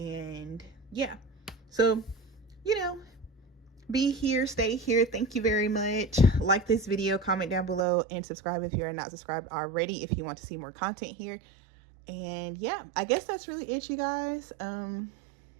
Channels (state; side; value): drops out; left; at 7.9 s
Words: yeah, so, you know, be here, stay here. Thank you very much. Like this video, comment down below, and subscribe if you're not subscribed already if you want to see more content here. And yeah, I guess that's really it, you guys.